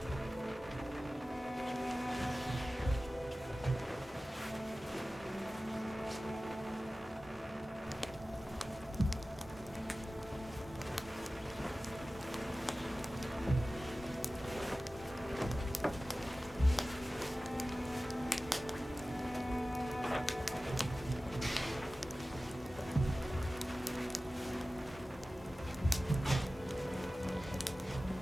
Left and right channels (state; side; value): normal; both; correlation 0.96